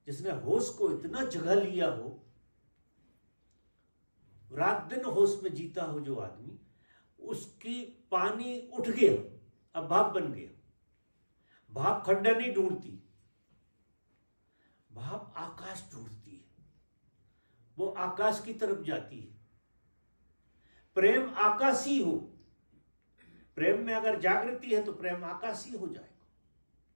जिसने होश को इतना जगा लिया हो, रात दिन होश में जीता हो जो आदमी, उसकी पानी उठ गया, अब भाप बन गया। भाप खड्डा नहीं ढूंढती, भाप आकाश ढूंढती है, वो आकाश की तरफ जाती है। प्रेम आकाशी हो, प्रेम में अगर जागृति है तो प्रेम आकाशी हो जाएगा।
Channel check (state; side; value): inverted; both; correlation -1.00